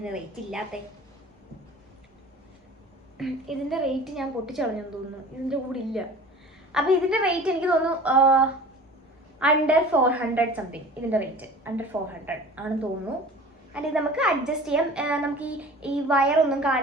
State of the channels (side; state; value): both; normal; correlation 0.42